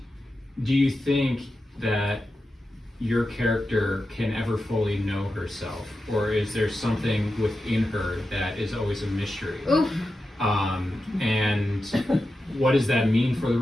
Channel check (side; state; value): both; normal; correlation 0.91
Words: do you think that your character can ever fully know herself, or is there something within her that is always a mystery? Oof. And what does that mean for the